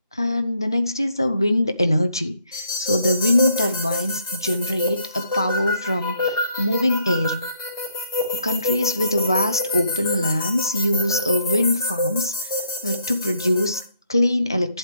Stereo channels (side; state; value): both; inverted; correlation -0.71